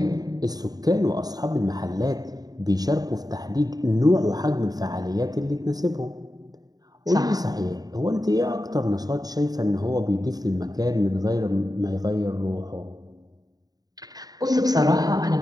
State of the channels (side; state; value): left; late; 0.18 ms